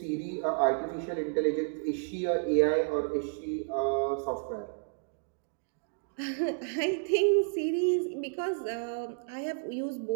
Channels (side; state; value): left; silent; digital silence